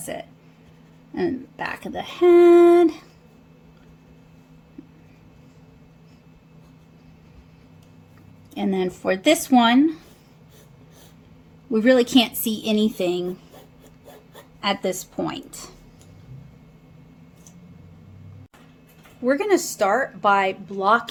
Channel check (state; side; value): identical; both; correlation 1.00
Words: it. And back of the head. And then for this one, we really can't see anything at this point. We're going to start by